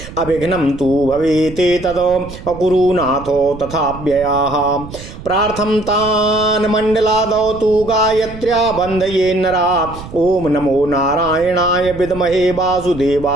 अविघ्नं तु भवेते तद अकुरुनाथो तथाव्ययाः। प्रार्थं तान् मण्डलादौ तु गायत्र्या बन्धये नरा। ओम नमो नारायणाय विद्महे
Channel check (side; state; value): right; noise; rumble, 14 dB below the sound